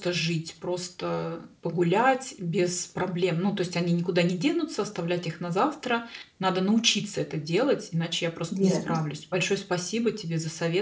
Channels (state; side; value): identical; both; correlation 1.00